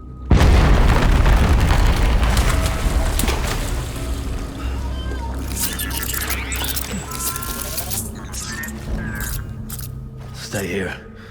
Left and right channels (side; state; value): both; identical; correlation 1.00